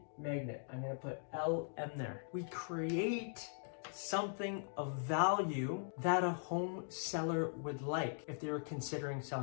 magnet. I'm going to put LM there. We create something of value that a home seller would like if they were considering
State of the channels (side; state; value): right; silent; digital silence